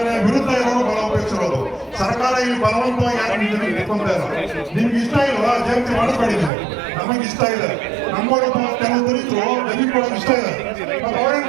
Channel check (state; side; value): drops out; left; at 6.5 s